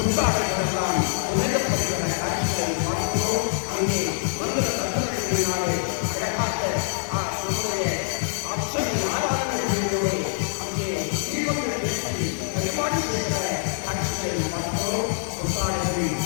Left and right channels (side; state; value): right; silent; digital silence